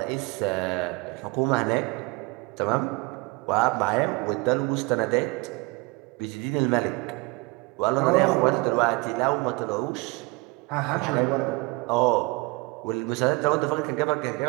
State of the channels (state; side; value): quieter; left; 25.7 dB